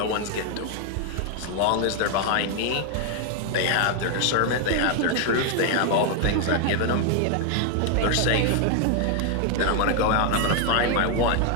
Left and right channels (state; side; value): different; both; correlation 0.00